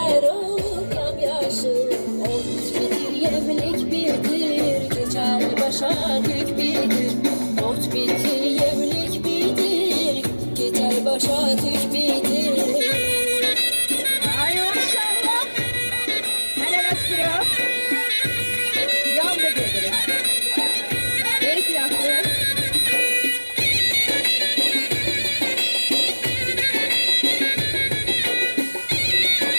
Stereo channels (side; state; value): both; inverted; correlation -1.00